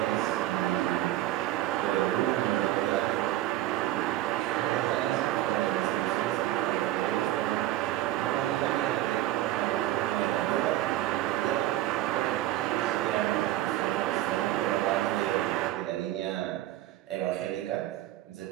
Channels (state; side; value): quieter; left; 14.7 dB